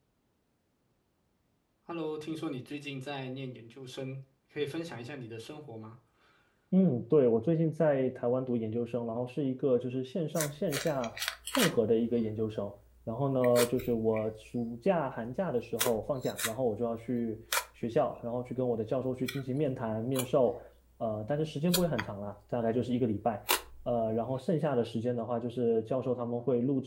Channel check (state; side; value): identical; both; correlation 1.00